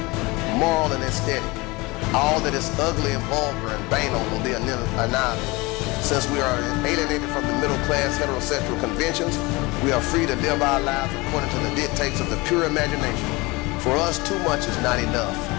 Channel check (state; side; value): quieter; right; 23.8 dB